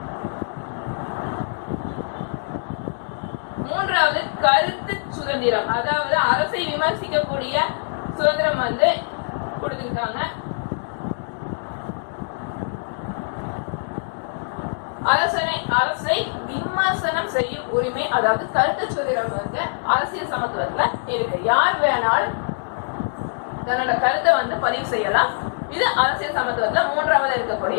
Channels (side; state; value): right; silent; digital silence